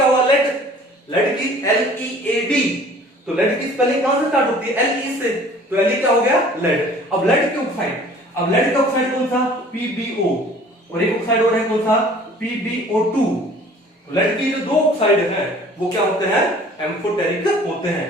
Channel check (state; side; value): normal; both; correlation 0.50